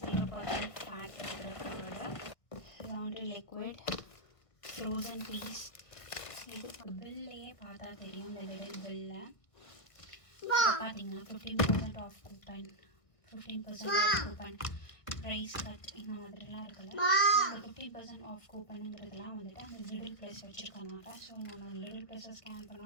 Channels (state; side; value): late; right; 1.5 ms